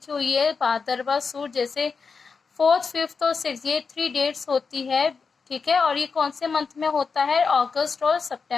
हुई है भादरवा सूद, जैसे 4th, 5th और 6th, ये 3 डेट्स होती है, ठीक है। और ये कौन से मंथ में होता है? अगस्त और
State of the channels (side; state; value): right; quieter; 5.1 dB